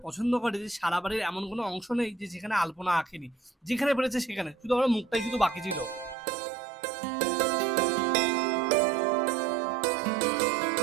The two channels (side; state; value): left; drops out; at 6.2 s